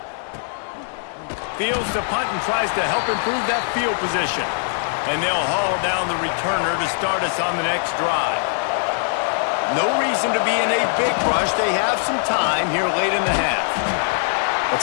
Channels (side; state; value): right; silent; digital silence